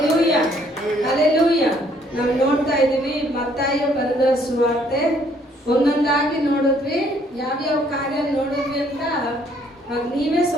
hallelujah. ನಾವು ನೋಡ್ತಾ ಇದ್ದೀವಿ ಮತ್ತಾಯ ಬರೆದ ಸುವಾರ್ತೆ ಒಂದೊಂದಾಗಿ ನೋಡಿದ್ವಿ. ಯಾವ್ಯಾವ ಕಾರ್ಯ ನೋಡಿದ್ವಿ ಅಂತ ನೀವೇ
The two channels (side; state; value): both; normal; correlation 0.65